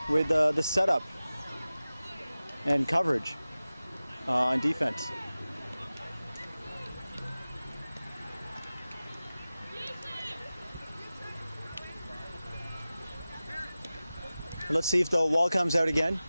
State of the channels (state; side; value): inverted; both; correlation -0.96